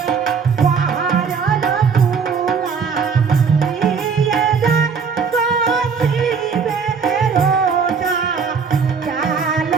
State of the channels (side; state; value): left; quieter; 5.8 dB